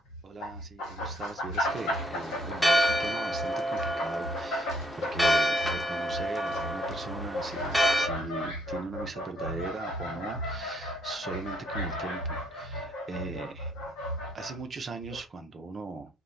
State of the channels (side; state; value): both; normal; correlation 0.70